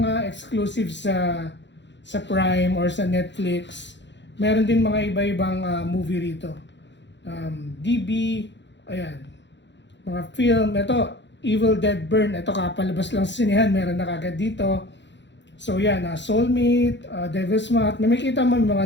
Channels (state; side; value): late; right; 0.52 ms